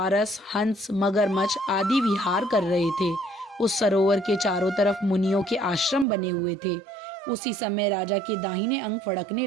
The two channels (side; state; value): left; drops out; at 6.1 s